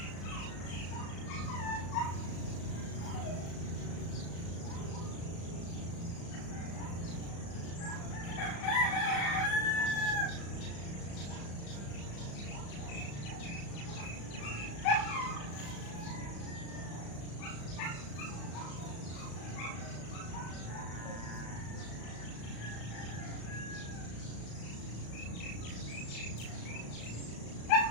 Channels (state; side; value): late; right; 35 ms